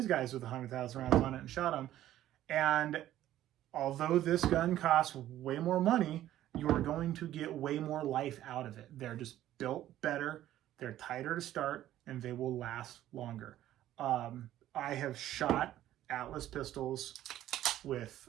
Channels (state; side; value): quieter; left; 13.1 dB